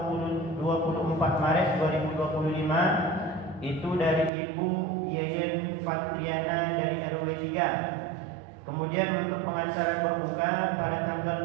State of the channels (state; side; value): drops out; left; at 4.3 s